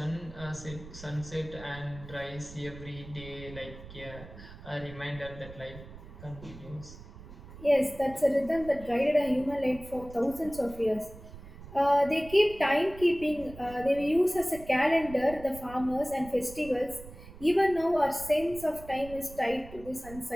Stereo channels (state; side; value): noise; right; rumble, 16 dB below the sound